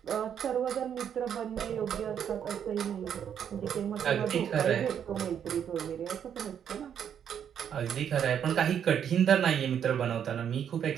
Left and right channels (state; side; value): quieter; left; 8.7 dB